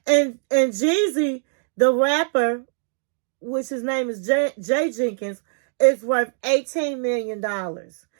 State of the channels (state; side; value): silent; left; digital silence